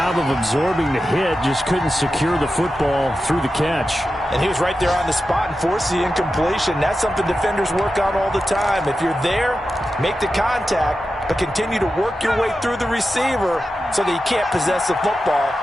of absorbing the hit, just couldn't secure the football through the catch. And he was right there on the spot and forced the incompletion. That's something defenders work on all the time. If you're there, make the contact, but continue to work your way through the receiver so that he can't possess the football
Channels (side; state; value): both; normal; correlation 0.91